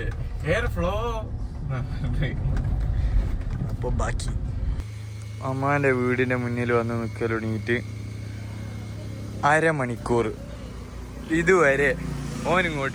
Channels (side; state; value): both; identical; correlation 1.00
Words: എയർ ഫ്ലോ. അപ്പൊ ബാക്കി അമ്മാന്റെ വീടിന്റെ മുന്നിൽ വന്ന് നിൽക്കൽ തുടങ്ങിയിട്ട് അരമണിക്കൂർ ഇതുവരെ